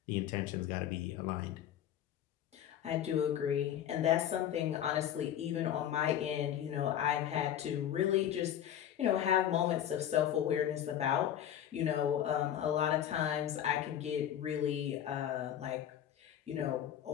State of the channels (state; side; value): quieter; right; 10.5 dB